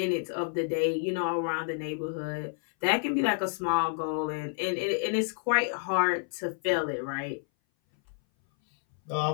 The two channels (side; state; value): right; silent; 58 dB below the other